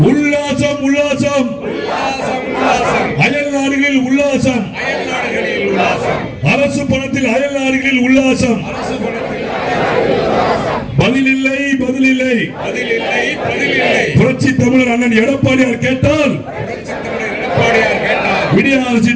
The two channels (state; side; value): identical; both; correlation 1.00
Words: உல்லாசம் உல்லாசம் அயல் நாடுகளில் உல்லாசம் அரசு பணத்தில் அயல் நாடுகளில் உல்லாசம் பதிலில்லை பதிலில்லை புரட்சி தமிழர் அண்ணன் எடப்பாடியார் கேட்டால் விடிய